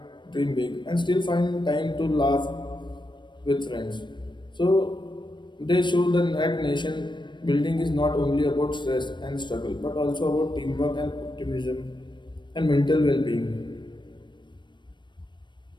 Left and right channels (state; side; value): late; right; 0.22 ms